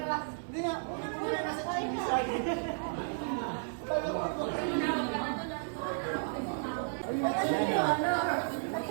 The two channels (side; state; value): left; silent; digital silence